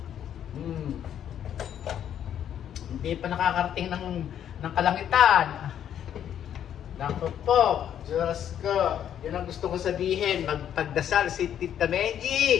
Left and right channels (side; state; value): right; quieter; 9.8 dB